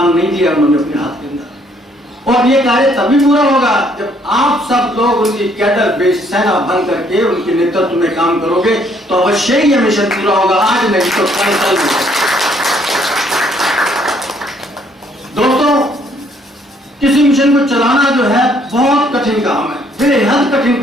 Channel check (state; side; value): normal; both; correlation 0.66